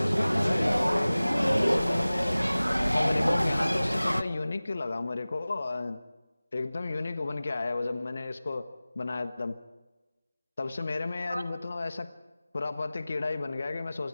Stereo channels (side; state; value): both; inverted; correlation -0.98